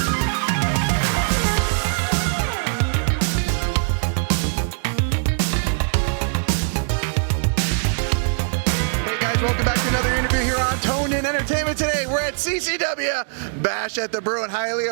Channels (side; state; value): left; silent; 65 dB below the other